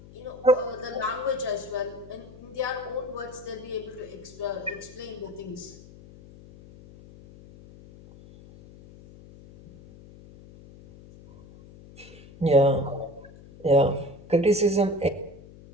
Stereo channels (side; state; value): left; noise; hum, 20 dB below the sound